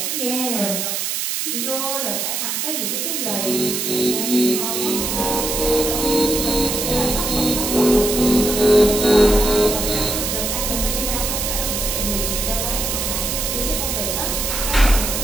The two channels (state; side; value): noise; right; hiss, 1 dB below the sound